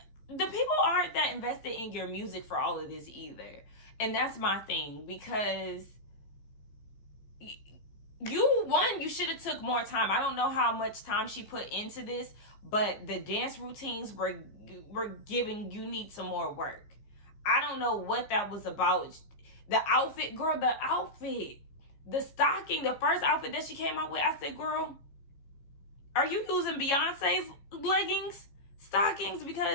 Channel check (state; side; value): late; right; 15 ms